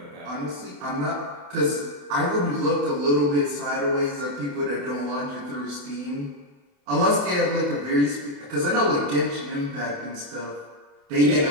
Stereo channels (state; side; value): late; left; 28 ms